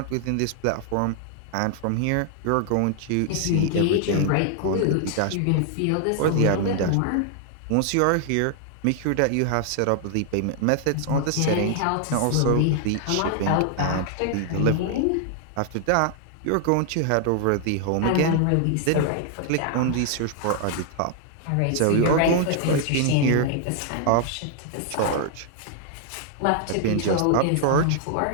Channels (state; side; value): different; both; correlation 0.00